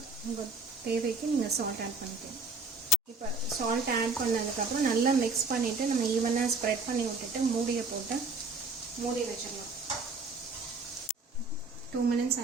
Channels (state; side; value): quieter; left; 3.5 dB